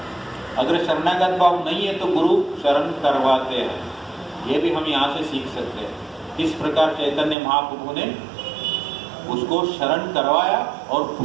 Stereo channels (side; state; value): left; drops out; at 7.4 s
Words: अगर शरणागत भाव नहीं है तो गुरु शरण करवाते हैं। ये भी हम यहाँ से सीख सकते हैं। इस प्रकार चैतन्य महाप्रभु ने उसको शरण करवाया, और